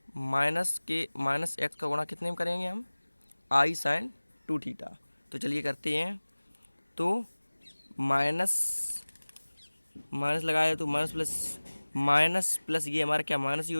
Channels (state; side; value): inverted; both; correlation -1.00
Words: माइनस x का गुणा कितने में करेंगे हम, i sin 2θ। तो चलिए करते हैं। तो माइनस लगाया तो माइनस प्लस ये हमारा क्या, माइनस ही हो